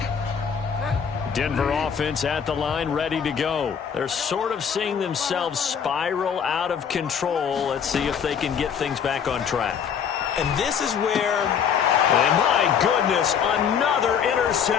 Denver offense at the line, ready to go. They're sort of seeing themselves spiral out of control. Let's see if they can get things back on track. And this is where... And my goodness, another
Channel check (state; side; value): quieter; right; 7.5 dB